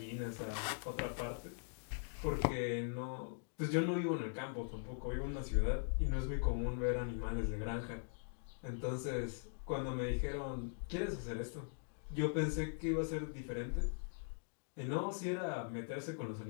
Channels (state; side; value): silent; right; digital silence